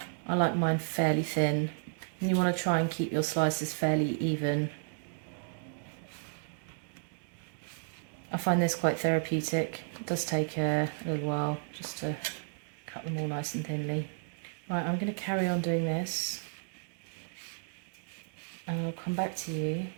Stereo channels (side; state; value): left; silent; 56 dB below the other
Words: I like mine fairly thin. And you want to try and keep your slices fairly even. I find this quite therapeutic. It does take a little while just to cut them all nice and thinly. Right, I'm going to carry on doing this and I'll come back to you